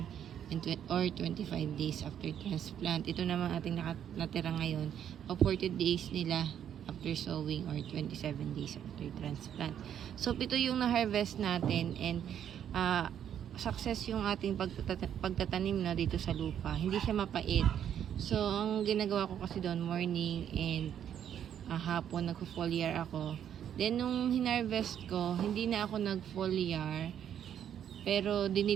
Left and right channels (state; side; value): quieter; left; 9.5 dB